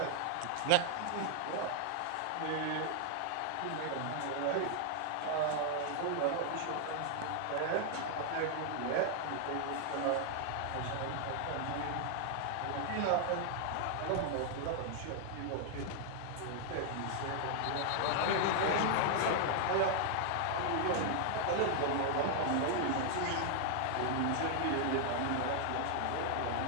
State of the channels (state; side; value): different; both; correlation 0.00